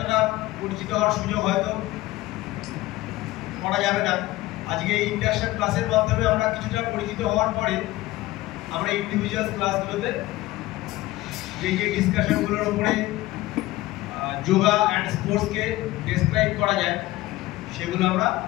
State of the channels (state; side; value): quieter; right; 17.9 dB